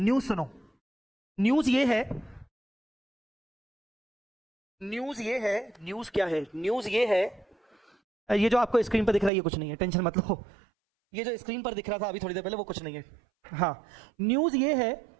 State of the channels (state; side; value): drops out; left; at 9.3 s